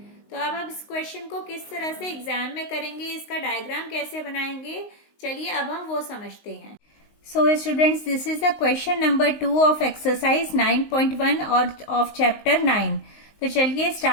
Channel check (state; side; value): late; right; 19 ms